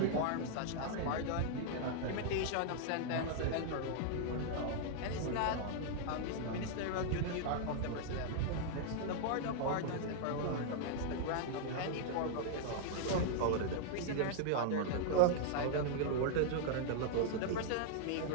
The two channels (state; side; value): different; both; correlation 0.00